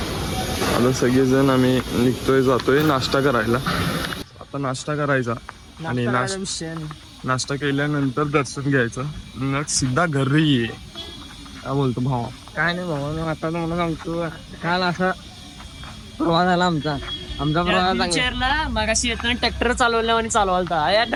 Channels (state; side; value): identical; both; correlation 1.00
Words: आता सगळेजण आम्ही निघतोय, जातोय नाश्ता करायला. आता नाश्ता करायचा आणि नाश्ता केल्यानंतर दर्शन घ्यायचं. मग सिधा घरी ये. काय बोलतो भावा? काय नाही भाऊ, आता मला सांगतो, काल असा प्रवास झाला आमचा प्रवास. मगाशी येताना ट्रॅक्टर चालवल्या आणि चालवालता.